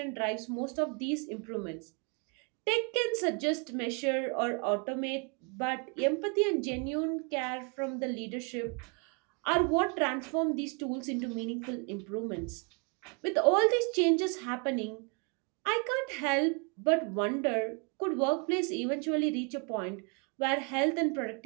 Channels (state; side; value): quieter; left; 34.7 dB